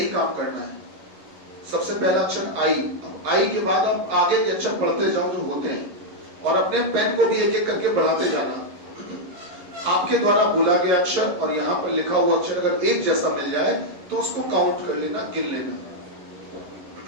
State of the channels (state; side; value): late; left; 11 ms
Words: काम करना है। सबसे पहला अक्षर आई, अब आई के बाद आप आगे के अक्षर पढ़ते जाओ जो होते हैं और अपने पेन को भी एक एक करके बढ़ाते जाना। आपके द्वारा बोला गया अक्षर और यहाँ पर लिखा हुआ अक्षर अगर एक जैसा मिल जाए तो उसको काउंट कर लेना, गिन लेना।